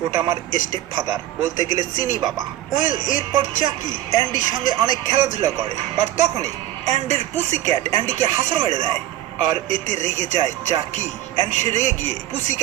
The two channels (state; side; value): quieter; left; 13.5 dB